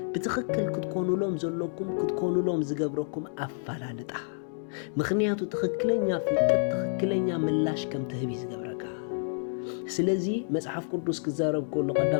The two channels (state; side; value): silent; right; digital silence